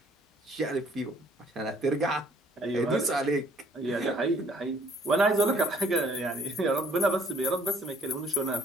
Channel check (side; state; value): both; normal; correlation 0.61